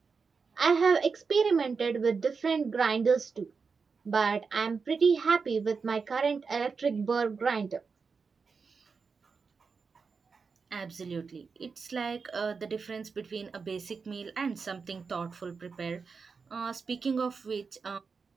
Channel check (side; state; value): left; quieter; 5.1 dB